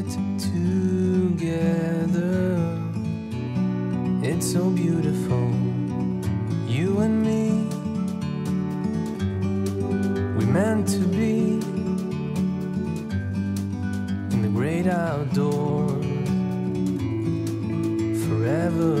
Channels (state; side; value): identical; both; correlation 1.00